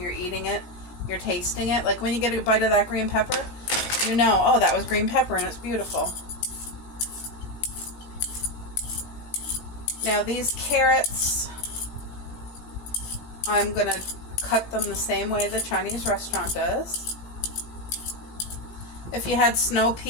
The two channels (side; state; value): right; late; 17 ms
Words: eating it, you're tasting it. Like when you get a bite of that green pepper, you know, oh, that was green pepper and it's beautiful. Now these carrots, I'm going to cut them the same way the Chinese restaurant does. If you had snow